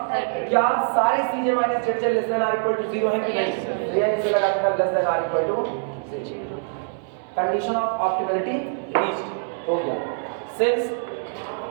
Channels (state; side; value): silent; left; digital silence